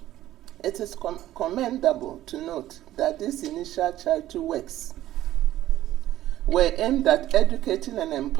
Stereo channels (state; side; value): quieter; left; 13.9 dB